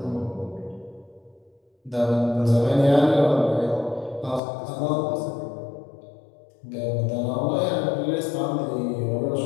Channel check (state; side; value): drops out; right; at 4.4 s